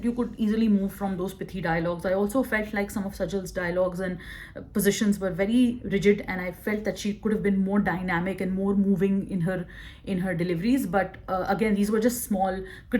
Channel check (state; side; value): identical; both; correlation 1.00